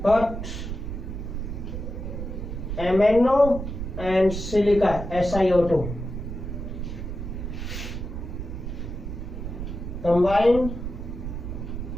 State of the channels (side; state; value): right; noise; rumble, 6 dB below the sound